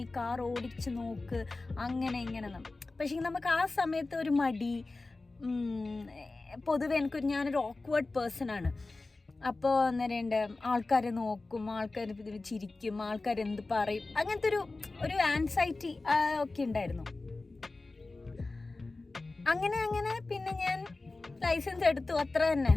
കാർ ഓടിച്ച് നോക്ക് അങ്ങനെ ഇങ്ങനെ. പക്ഷേ നമുക്ക് ആ സമയത്ത് ഒരു മടി, പൊതുവെ ഞാനൊരു ഓക്വേർഡ് പേഴ്സൺ ആണ്. അപ്പോൾ അന്നേരം ആൾക്കാരെ നോക്കും, ആൾക്കാർ ചിരിക്കും, ആൾക്കാരെന്ത് പറയും, അങ്ങനത്തെ ഒരു ആൻസൈറ്റി ഒക്കെ ഉണ്ടായിരുന്നു. അങ്ങനെ പിന്നെ ഞാൻ ലൈസൻസ് എടുത്തു, അത്ര തന്നെ.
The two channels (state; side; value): quieter; right; 3.4 dB